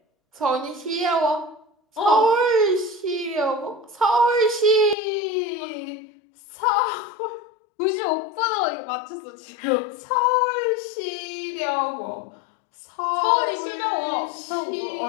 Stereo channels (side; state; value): right; drops out; at 5.0 s